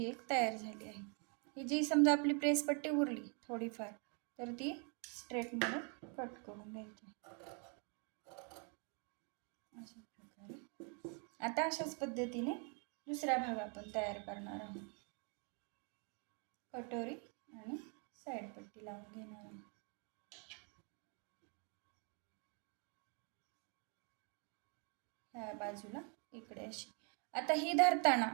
एक तयार झाली आहे. ही जी समजा आपली प्रेस पट्टी उरली थोडीफार तर ती स्ट्रेटमध्ये कट करून घ्यायची अशा प्रकारे. आता अशाच पद्धतीने दुसरा भाग आपण तयार करणार आहोत. कटोरी आणि साईड पट्टी लावून घेणार आहोत. ह्या बाजूला इकडे अशी. आता ही धरताना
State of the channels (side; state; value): left; quieter; 38.6 dB